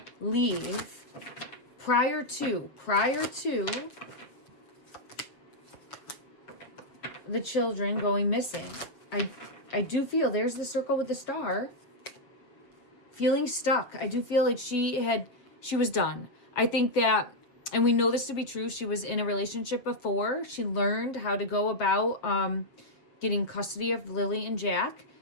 leave prior to the children going missing. I do feel there's the circle with the star. Feeling stuck. I do feel like she was done. I think that, and we know this to be true, she was in a relationship before. She learned how to go about getting custody of Lily and Jack,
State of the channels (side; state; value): right; late; 7.3 ms